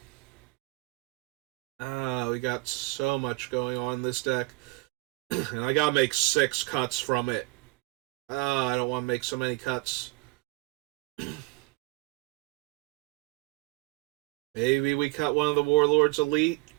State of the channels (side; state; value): left; quieter; 25.9 dB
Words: We got so much going on in this deck. And I gotta make 6 cuts from it. I don't want to make so many cuts. Maybe we cut one of the Warlords Elite